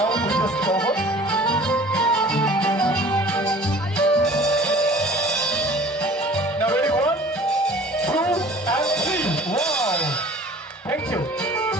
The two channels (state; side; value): normal; both; correlation 0.47